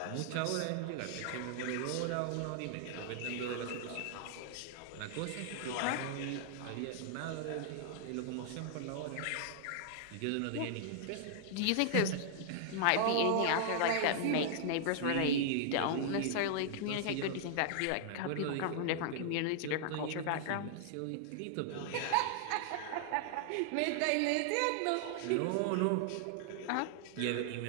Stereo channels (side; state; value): both; different; correlation -0.01